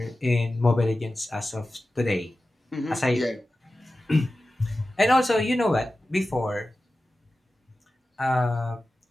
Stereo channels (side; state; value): both; normal; correlation 0.94